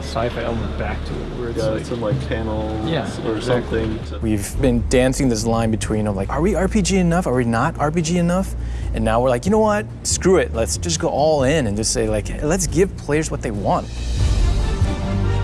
sci-fi element back to it, where it's like, some like panels or exactly. something. We've been dancing this line between, like, are we RPG enough? Are we not RPG enough? And now we're like, you know what? Screw it. Let's just go all in and just say, like, hey, let's give players what they want.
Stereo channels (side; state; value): both; identical; correlation 1.00